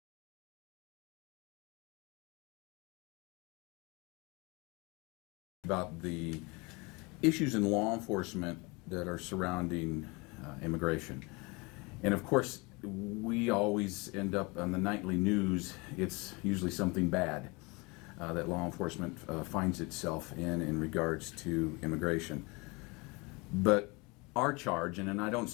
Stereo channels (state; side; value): quieter; right; 27.0 dB